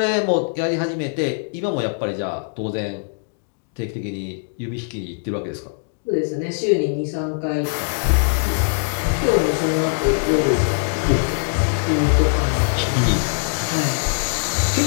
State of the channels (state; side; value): silent; right; digital silence